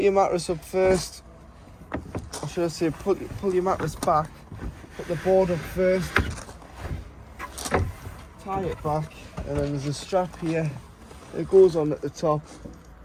your mattress up first, or should I say pull your mattress back, put the board up first, tie it back, and then there's a strap here. It goes on at the top,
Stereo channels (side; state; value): both; identical; correlation 1.00